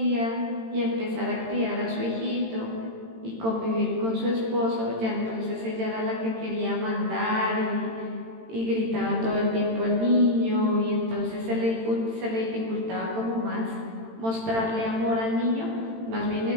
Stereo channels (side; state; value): left; late; 18 ms